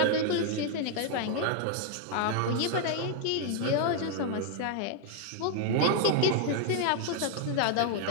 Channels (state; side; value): different; both; correlation 0.00